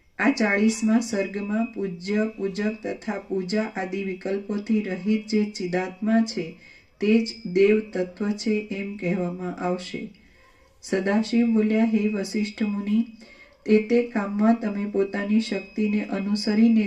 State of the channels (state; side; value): identical; both; correlation 1.00